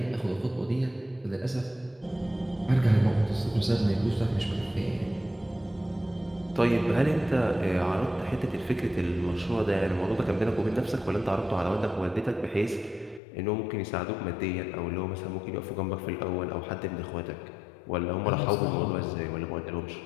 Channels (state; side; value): drops out; right; at 13.2 s